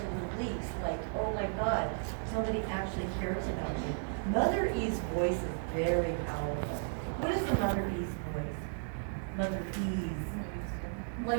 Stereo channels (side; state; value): left; silent; digital silence